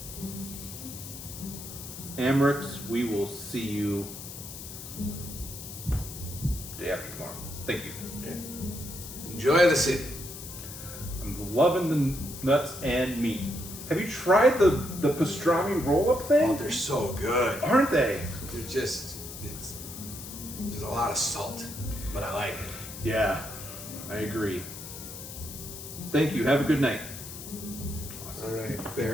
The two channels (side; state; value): left; noise; hiss, 11 dB below the sound